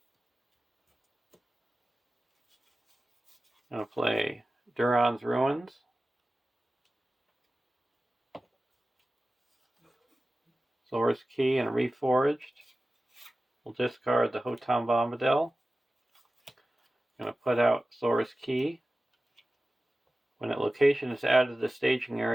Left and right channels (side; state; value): both; normal; correlation 0.95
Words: I'm going to play Duran's Ruins, Thor's Key, and Reforged. We'll discard the Hotam Bombadil. I'm going to put out Thor's Key. When a location is added to the staging